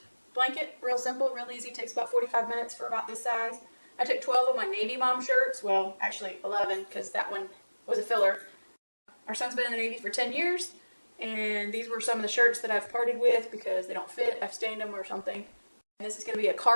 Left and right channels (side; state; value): both; inverted; correlation -1.00